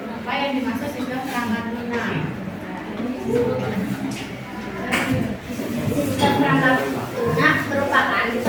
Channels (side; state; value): both; identical; correlation 1.00